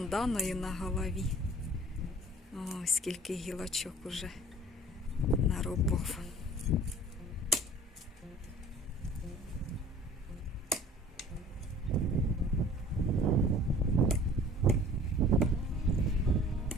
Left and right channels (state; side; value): normal; both; correlation 0.47